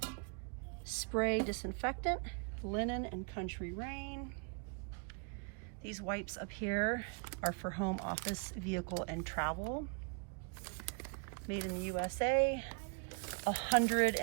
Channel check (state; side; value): quieter; left; 36.9 dB